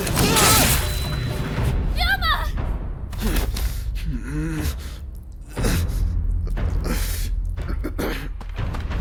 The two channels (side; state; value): both; identical; correlation 1.00